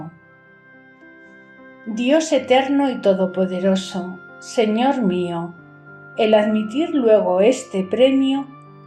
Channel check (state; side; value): identical; both; correlation 1.00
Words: Dios eterno y todopoderoso, Señor mío, el admitir luego este premio